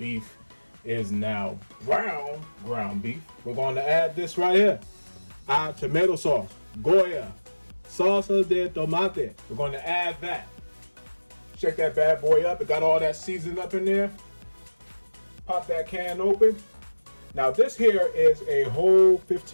is now brown ground beef, we're going to add this right here. Our tomato sauce, Goya, salsa de tomate. We're going to add that. Check that bad boy up. It got all that seasoning up in there. Pop that can open. Now this here is a whole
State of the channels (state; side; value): inverted; both; correlation -1.00